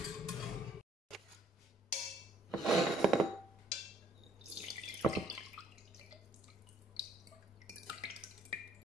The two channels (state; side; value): normal; both; correlation 0.62